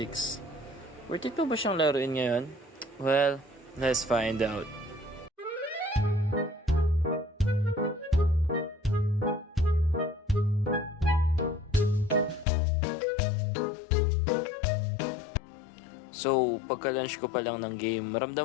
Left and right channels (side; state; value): right; drops out; at 12.5 s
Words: Worth it pa ba siyang laruin ngayon? Well, let's find out. So, pagka-launch ko pa lang ng game,